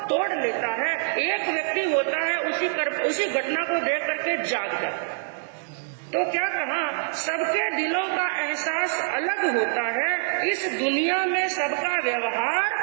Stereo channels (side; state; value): left; silent; digital silence